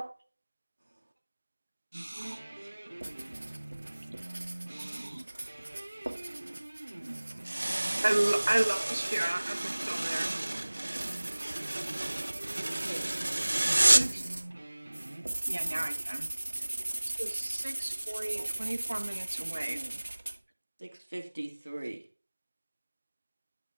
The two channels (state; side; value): inverted; both; correlation -1.00